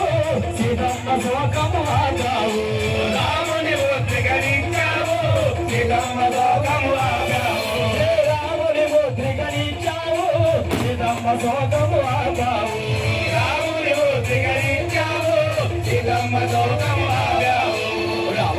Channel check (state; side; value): identical; both; correlation 1.00